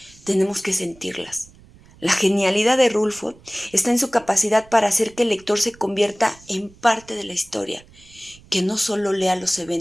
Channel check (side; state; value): right; noise; rumble, 25 dB below the sound